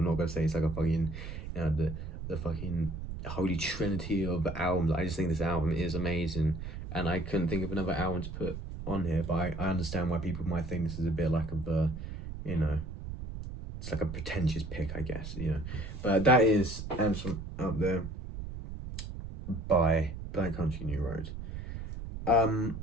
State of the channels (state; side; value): noise; right; rumble, 8 dB below the sound